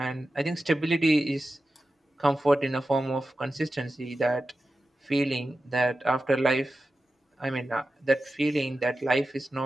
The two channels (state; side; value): normal; both; correlation 0.92